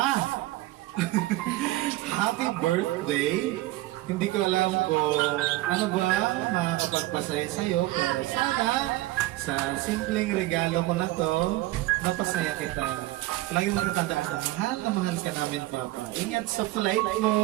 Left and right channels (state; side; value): quieter; left; 17.7 dB